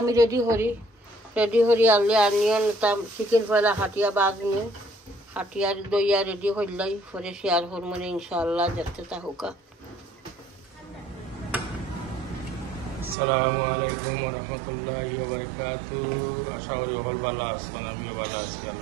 রেডি করি আনলে আনিয়ন চিকেন পয়লা হাটিয়া বাজমু, হাটিয়ার দইয়া রেডি করলাই পরে শেয়ার করবো ইনশাআল্লাহ। দেখতে থাকুকা। আসসালামু আলাইকুম ওয়া রাহমাতুল্লাহি ওয়া বারাকাতুহু। আশা করি সকল ভালো আছেন, আমিও ভালো আছি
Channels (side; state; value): left; drops out; at 13.2 s